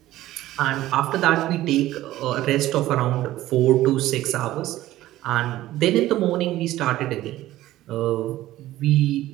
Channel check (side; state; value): left; quieter; 15.2 dB